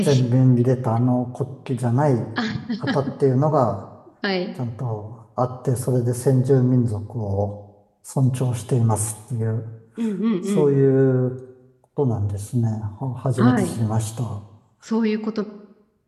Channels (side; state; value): both; identical; correlation 1.00